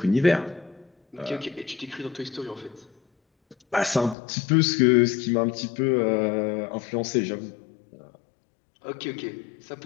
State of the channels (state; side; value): drops out; right; at 4.2 s